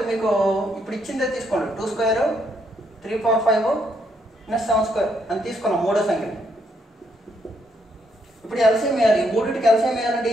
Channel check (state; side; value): normal; both; correlation 0.74